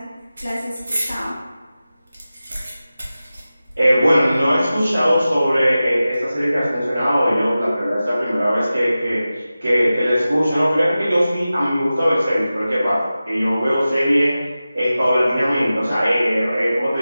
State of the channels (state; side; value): inverted; both; correlation -0.95